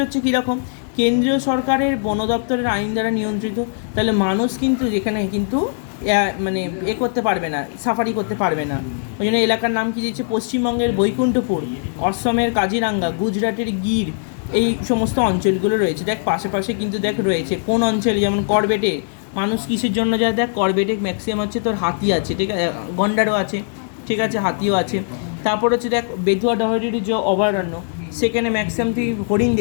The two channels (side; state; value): right; silent; digital silence